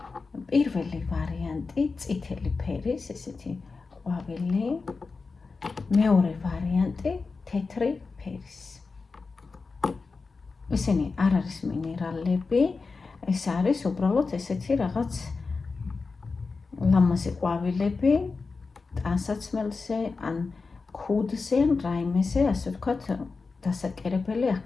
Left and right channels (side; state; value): right; quieter; 4.3 dB